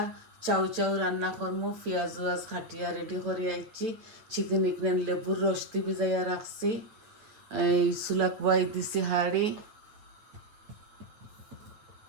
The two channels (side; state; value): left; late; 9.0 ms